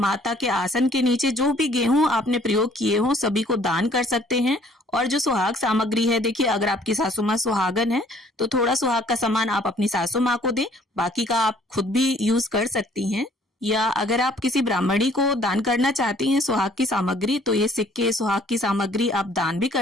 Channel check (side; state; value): both; normal; correlation 0.59